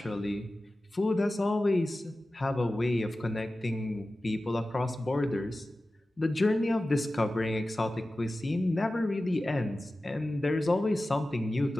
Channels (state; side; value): normal; both; correlation 0.95